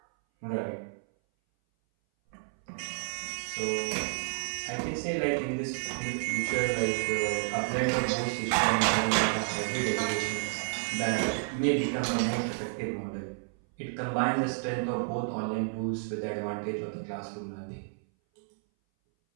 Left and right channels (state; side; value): silent; left; 57 dB below the other